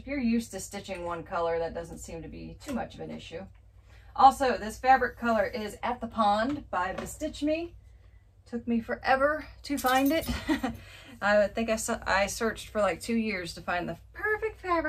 you're used to stitching one color, that doesn't seem to be too much of an issue. Also, this fabric color is At the Pond by BeStitchme. Took me forever to find it. I think I searched for like 2 years to find the perfect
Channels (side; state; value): both; identical; correlation 1.00